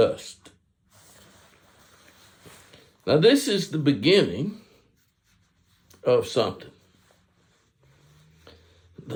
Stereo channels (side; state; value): both; identical; correlation 1.00